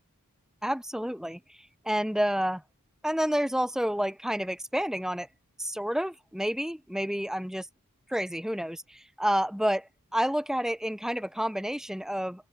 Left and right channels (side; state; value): both; normal; correlation 0.98